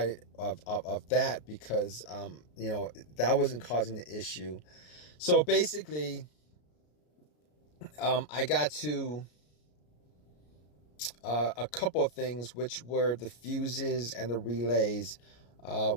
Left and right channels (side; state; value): right; late; 33 ms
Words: of that, because that wasn't causing the issue. So basically, I got to a couple of things, which were the fuses and the relays,